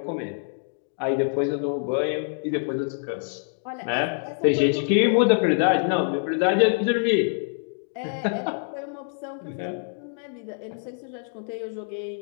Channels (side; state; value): right; silent; digital silence